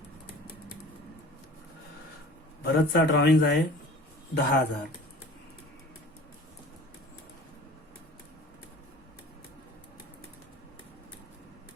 भरतचा ड्रॉइंग आहे 10,000.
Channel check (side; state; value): both; normal; correlation 0.43